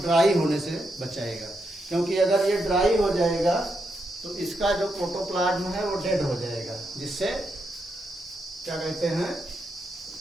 होने से बचाएगा। क्योंकि अगर ये ड्राई हो जाएगा तो इसका जो प्रोटोप्लाज्म है वो डेड हो जाएगा, जिससे क्या कहते हैं,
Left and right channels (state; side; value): normal; both; correlation 0.82